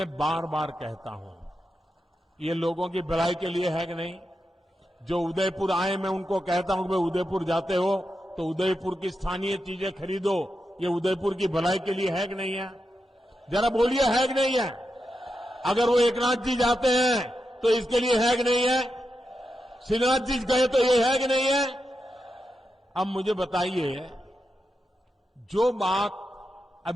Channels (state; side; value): normal; both; correlation 0.87